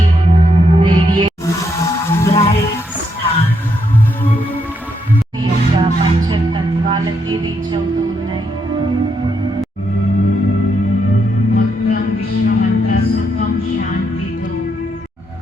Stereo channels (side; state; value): both; normal; correlation 0.78